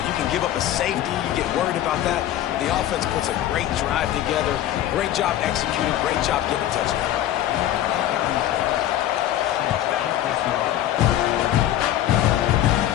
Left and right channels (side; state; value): right; quieter; 12.5 dB